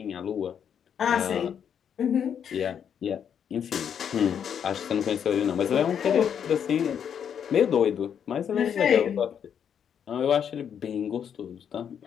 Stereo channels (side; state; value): right; quieter; 8.2 dB